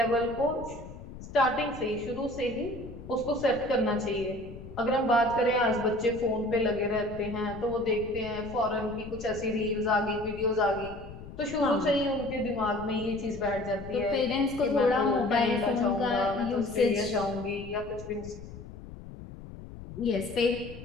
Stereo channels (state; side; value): noise; left; rumble, 14 dB below the sound